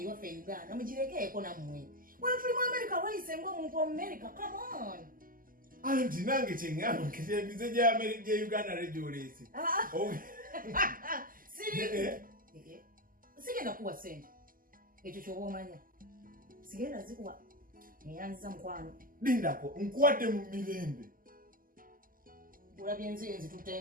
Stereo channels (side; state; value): left; late; 0.41 ms